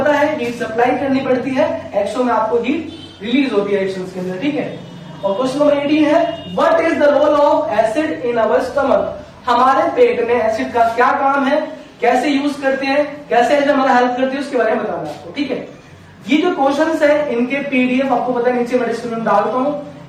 है हीट सप्लाई करनी पड़ती है, एक्सो में आपको हीट रिलीज होती है रिएक्शंस के अंदर। ठीक है। और क्वेश्चन नंबर 18 है what is the role of acid in our stomach. हमारे पेट में एसिड का क्या काम है, कैसे यूज करते हैं, कैसे एसिड हमारा हेल्प करती है उसके बारे में बताना है आपको। ठीक है। ये जो क्वेश्चंस है इनके पीडीएफ आपको पता है नीचे मैं डिस्क्रिप्शन में डालता हूं,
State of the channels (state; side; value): identical; both; correlation 1.00